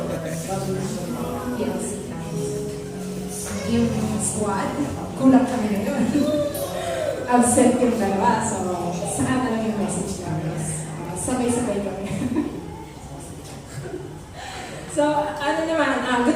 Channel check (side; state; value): both; identical; correlation 1.00